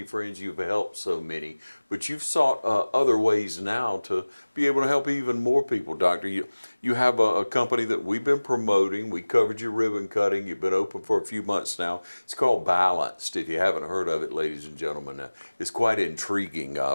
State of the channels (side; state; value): both; inverted; correlation -1.00